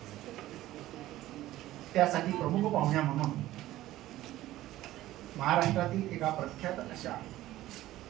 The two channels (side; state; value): left; quieter; 15.3 dB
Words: त्यासाठी प्रमुख पाहुण्या म्हणून महाराष्ट्रातील एका प्रख्यात अशा